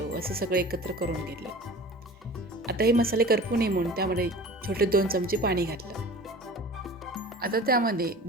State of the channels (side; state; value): both; normal; correlation 0.40